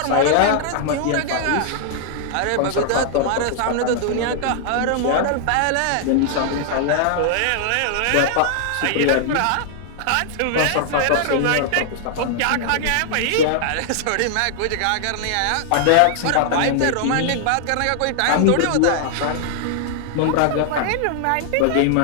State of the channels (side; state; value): both; different; correlation -0.01